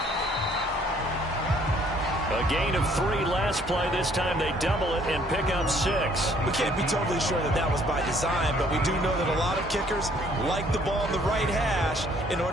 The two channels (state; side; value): normal; both; correlation 0.61